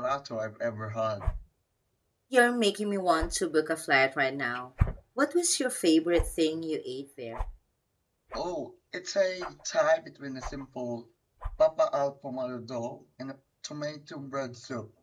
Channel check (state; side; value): identical; both; correlation 1.00